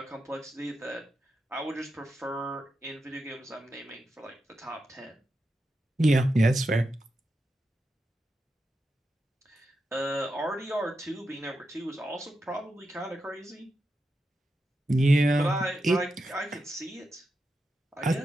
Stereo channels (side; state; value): both; normal; correlation 0.88